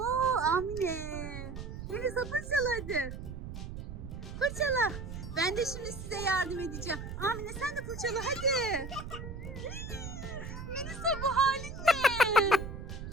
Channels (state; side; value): noise; right; rumble, 9 dB below the sound